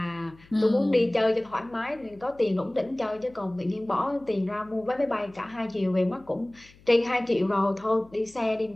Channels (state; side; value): noise; left; hum, 26 dB below the sound